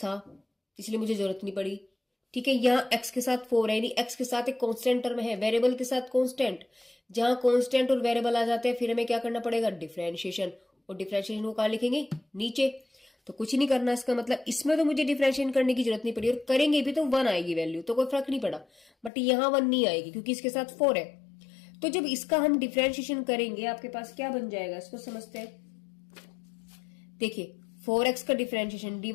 इसलिए मुझे जरूरत नहीं पड़ी, ठीक है, यहाँ x के साथ 4 है, यानी x के साथ एक कांस्टेंट टर्म है, वेरिएबल के साथ कांस्टेंट। जहां कांस्टेंट और वेरिएबल आ जाते हैं फिर हमें क्या करना पड़ेगा, डिफरेंशिएशन, और डिफरेंशिएशन को कहां लिखेंगे, नीचे। तो कुछ नहीं करना, इसका मतलब इसमें तो मुझे डिफरेंशिएशन करने की जरूरत नहीं पड़ी, और करेंगे भी तो 1 आएगी वैल्यू, तो कोई फर्क नहीं पड़ा, बट यहाँ 1 नहीं आएगी क्योंकि इसके साथ 4 है। तो जब इसका हम डिफरेंशिएशन करेंगे आपके पास क्या बन जाएगा, इसको समझते हैं। देखिए 4x का डिफरेंशिएशन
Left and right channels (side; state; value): right; drops out; at 19.1 s